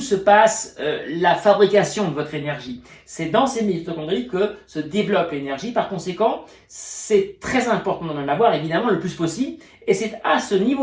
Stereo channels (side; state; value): both; identical; correlation 1.00